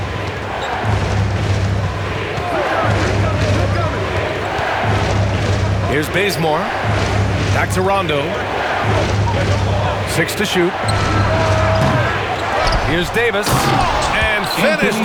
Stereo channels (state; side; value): identical; both; correlation 1.00